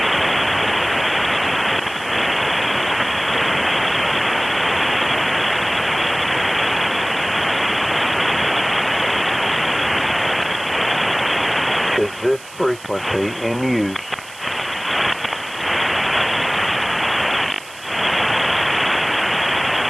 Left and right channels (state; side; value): noise; right; hiss, 19 dB below the sound